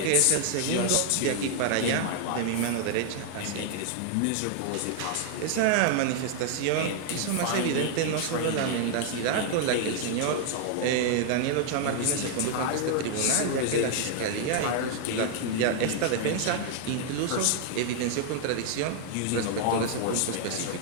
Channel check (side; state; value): both; different; correlation 0.00